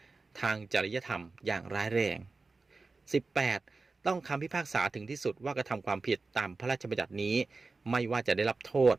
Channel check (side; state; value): left; quieter; 3.9 dB